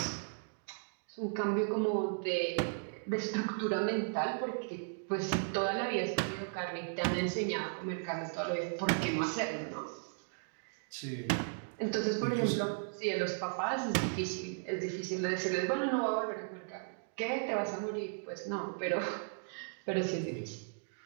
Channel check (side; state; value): left; silent; digital silence